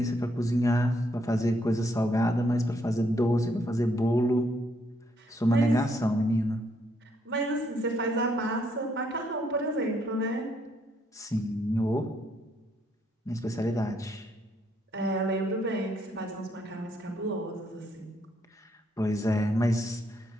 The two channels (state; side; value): normal; both; correlation 0.73